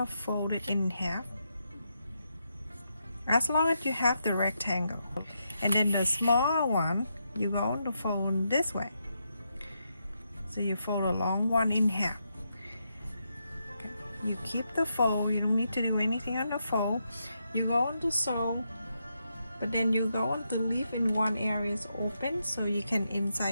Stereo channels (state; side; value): inverted; both; correlation -0.82